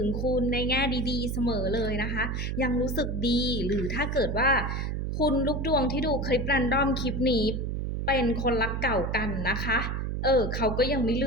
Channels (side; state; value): right; noise; hum, 2 dB below the sound